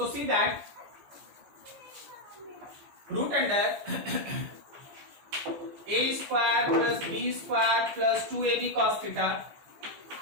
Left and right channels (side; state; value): left; late; 14 ms